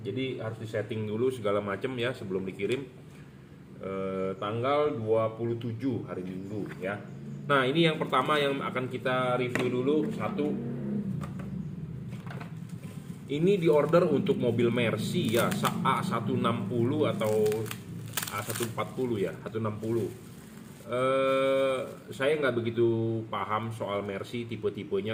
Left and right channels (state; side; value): identical; both; correlation 1.00